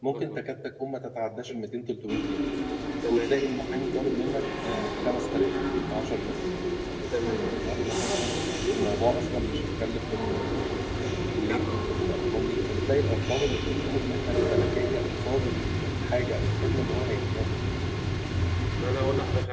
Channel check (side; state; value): both; identical; correlation 1.00